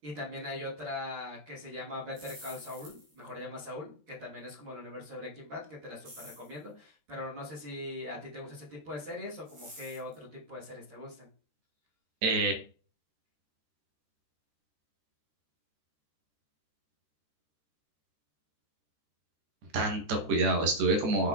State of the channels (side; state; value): left; late; 13 ms